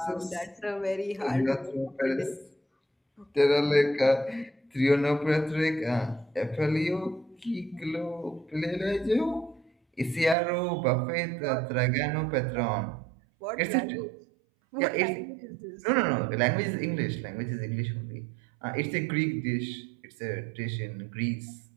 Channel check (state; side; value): drops out; left; at 10.4 s